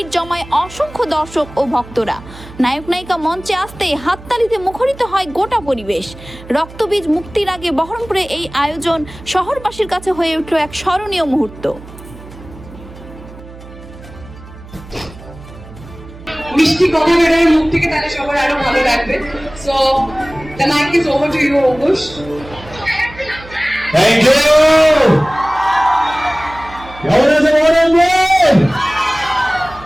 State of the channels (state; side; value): noise; right; hum, 18 dB below the sound